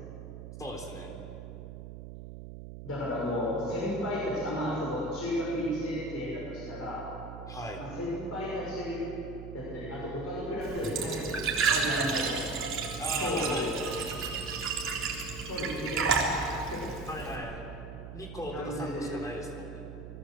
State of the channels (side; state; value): right; noise; hum, 10 dB below the sound